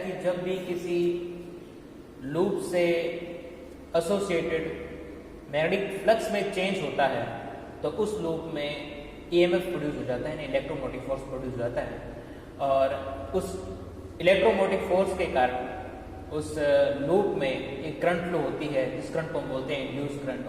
जब भी किसी लूप से एसोसिएटेड मैग्नेटिक फ्लक्स में चेंज होता है तो उस लूप में ईएमएफ प्रोड्यूस हो जाता है, इलेक्ट्रोमोटिव फोर्स प्रोड्यूस हो जाता है और उस इलेक्ट्रोमोटिव फोर्स के कारण उस लूप में एक करंट फ्लो होती है जिस करंट को हम बोलते हैं इंड्यूस करंट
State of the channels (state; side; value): identical; both; correlation 1.00